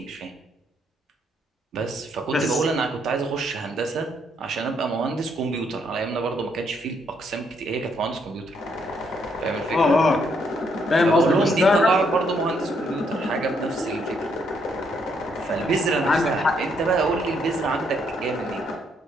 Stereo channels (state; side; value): normal; both; correlation 0.73